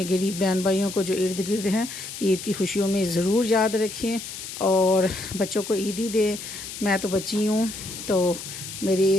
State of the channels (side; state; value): left; noise; hiss, 10 dB below the sound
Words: غریب بہن بھائیوں کو جو ارد گرد ہیں عید کی خوشیوں میں ضرور یاد رکھیں، اور بچوں کو عیدی دیں۔ میں تو بچی ہوں، تو